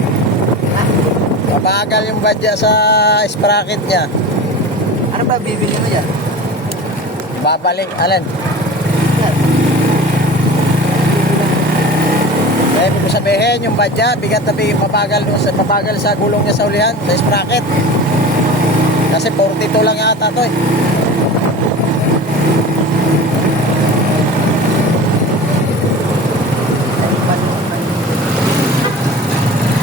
Mabagal yung badya sa sprocket niya. Ano ba bibili mo dyan? Babalik, alin? Kaya ibig ko sabihin, yung badya, bigat na bigat, mabagal sa gulong niya sa ulihan, sa sprocket. Kasi 42 lang yata to eh.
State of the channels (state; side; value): normal; both; correlation 0.34